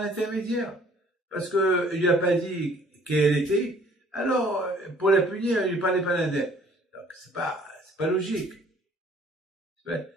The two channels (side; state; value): both; normal; correlation 0.57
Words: intermédiaire. Parce que il lui a pas dit qu'elle était, alors, pour la punir, il lui parlait par un intermédiaire. Donc, c'est pas logique.